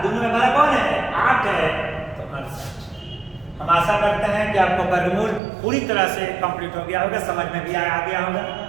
दोनों में बड़ा कौन है, 8 है, तो 68। हम आशा करते हैं कि आपको वर्गमूल पूरी तरह से कंप्लीट हो गया होगा, समझ में भी आ गया होगा।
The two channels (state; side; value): drops out; left; at 5.4 s